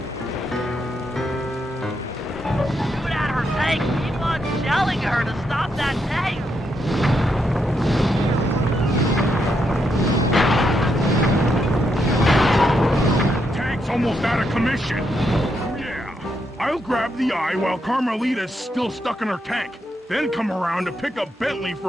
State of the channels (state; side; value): normal; both; correlation 0.80